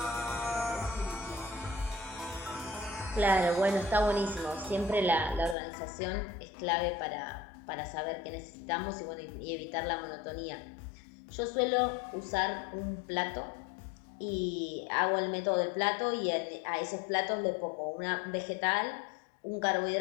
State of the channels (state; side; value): drops out; right; at 5.6 s